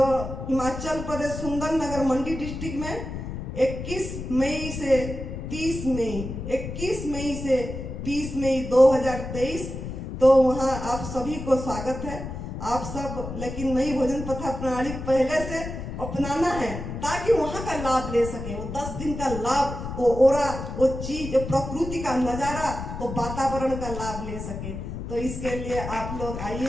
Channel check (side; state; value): left; noise; rumble, 7 dB below the sound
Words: हिमाचल प्रदेश सुंदरनगर मंडी डिस्ट्रिक्ट में 21 मई से 30 मई 2023, तो वहाँ आप सभी को स्वागत है। आप सब लेकिन नई भोजन पथा प्रणाली पहले से अपनाना है ताकि वहाँ का लाभ ले सके। वो 10 दिन का लाभ, वो ओरा, वो चीज, प्रकृति का नजारा, वो वातावरण का लाभ ले सके। तो इसके लिए आप लोग